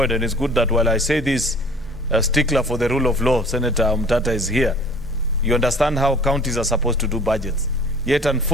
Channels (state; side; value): noise; left; rumble, 23 dB below the sound